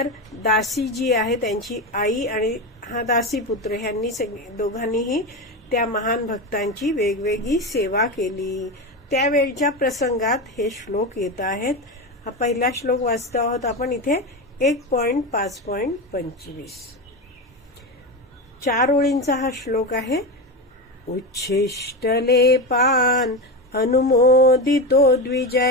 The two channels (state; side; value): normal; both; correlation 0.18